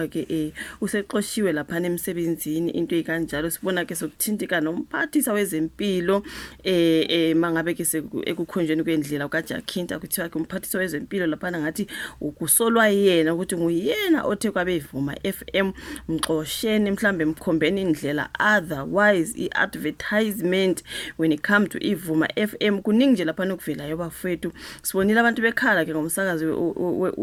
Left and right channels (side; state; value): both; identical; correlation 1.00